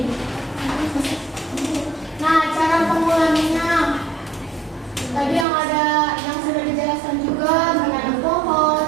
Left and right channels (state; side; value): drops out; left; at 5.5 s